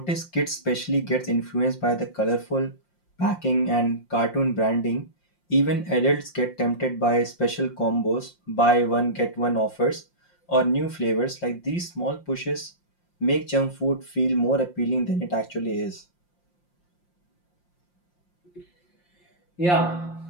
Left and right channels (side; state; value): right; late; 5.7 ms